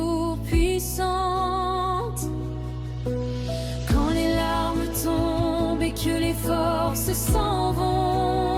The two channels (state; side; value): identical; both; correlation 1.00